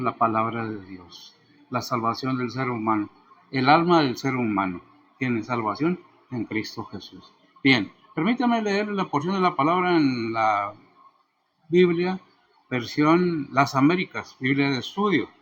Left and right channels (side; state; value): both; identical; correlation 1.00